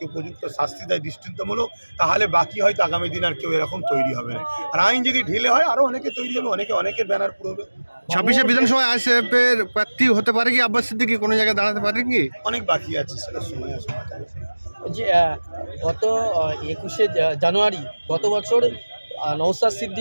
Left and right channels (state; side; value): inverted; both; correlation -1.00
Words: উপযুক্ত শাস্তি দেয় দৃষ্টান্তমূলক, তাহলে বাকি হয়তো আগামী দিন আর কেউ এরকম তৈরি হবে না। আর আইন যদি ঢিলে হয়, আরও অনেকে তৈরি হবে, অনেকের ব্যানার পুরোবে। 26শে বিধানসভায় আইএসএফ এর প্রার্থী হতে পারে কি আব্বাস সিদ্দিকী, কোনো জায়গায় দাঁড়াতে পারে কি? অনেক বাকি আছে, সেটা সময় আসবে। যে গত 21শে জানুয়ারি গত বছর নওশাদ